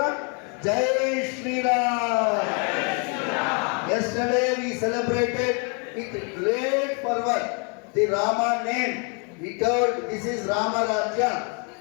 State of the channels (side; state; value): right; quieter; 36.3 dB